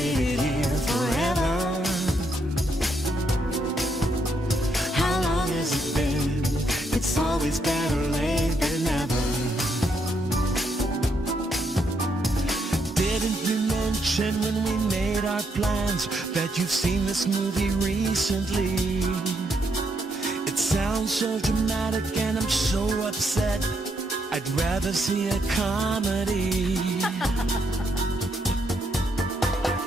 here forever. How long has it been? It's always better late than never. Didn't you mention when we made our plans that you've seen this movie recently? It sounds so dramatic and I'm so upset. I'd rather see a comedy.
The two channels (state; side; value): normal; both; correlation 0.76